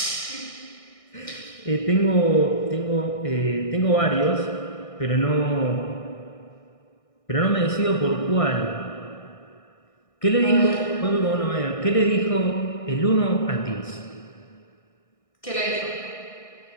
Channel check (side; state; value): right; late; 1.6 ms